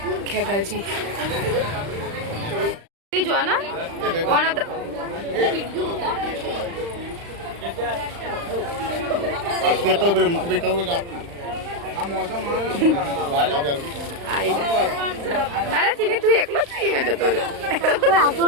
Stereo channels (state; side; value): late; left; 35 ms